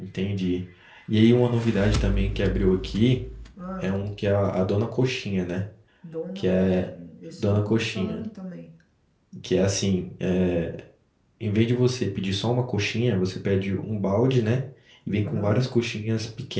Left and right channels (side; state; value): both; identical; correlation 1.00